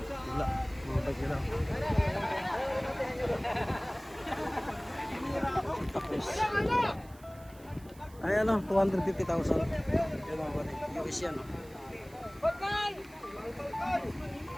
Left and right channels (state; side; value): noise; right; hiss, 24 dB below the sound